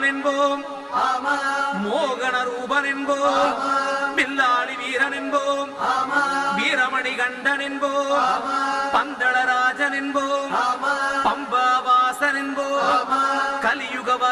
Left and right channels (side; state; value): both; identical; correlation 1.00